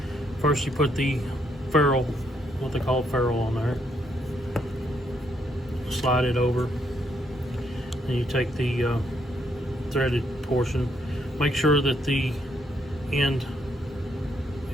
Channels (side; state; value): both; normal; correlation 0.74